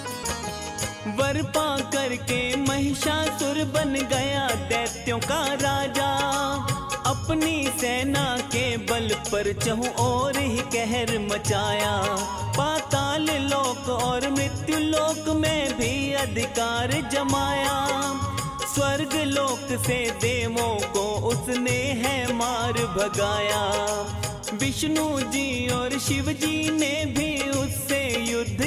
वर पा करके महिषासुर बन गया दैत्यों का राजा। अपनी सेना के बल पर चहुं ओर ही कहर मचाया। पाताल लोक और मृत्यु लोक में भी अधिकार जमाया। स्वर्ग लोक से देवों को उसने है मार भगाया। विष्णु जी और शिव जी ने भी उससे युद्ध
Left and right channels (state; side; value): identical; both; correlation 1.00